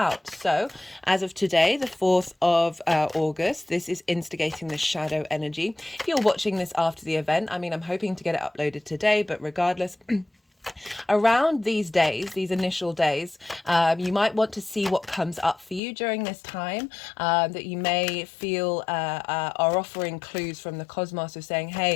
So as of today, the 4th of August, this is instigating the shadow energy. If you're watching this after the event, I'm hoping to get it uploaded today, but regardless, around these days, these initial days, you might want to see what comes up for you during this time, that you may feel are offering clues from the cosmos of saying,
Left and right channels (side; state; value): right; drops out; at 15.8 s